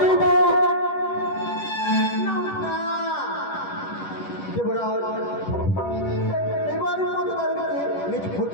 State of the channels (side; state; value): right; late; 10 ms